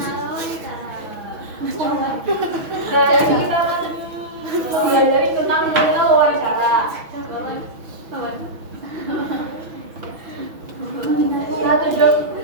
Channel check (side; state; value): left; late; 6.2 ms